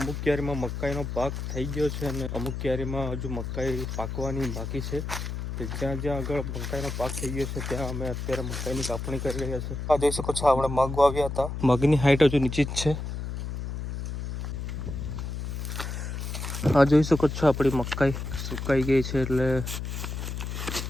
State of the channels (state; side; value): noise; left; hum, 5 dB below the sound